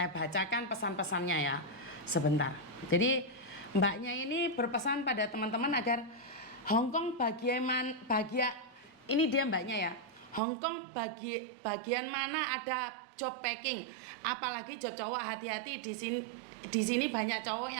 bacakan pesan-pesannya ya, sebentar. Jadi mbaknya ini berpesan pada teman-teman agar Hong Kong ini dia mbaknya ya. Hong Kong bagian mana ada job packing, apalagi job cowok, hati-hati di sini banyak cowok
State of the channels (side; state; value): left; drops out; at 10.4 s